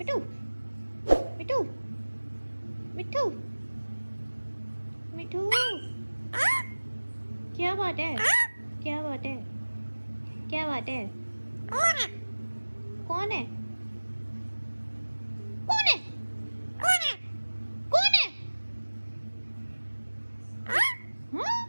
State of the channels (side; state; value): both; inverted; correlation -1.00